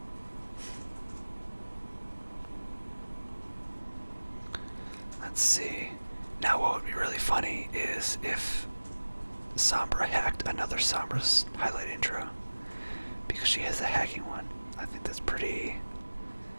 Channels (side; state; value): both; inverted; correlation -1.00